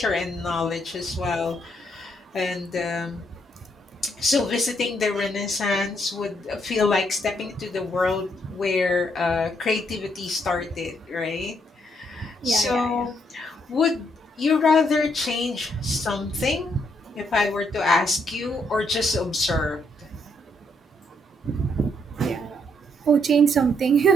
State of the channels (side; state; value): both; normal; correlation 0.74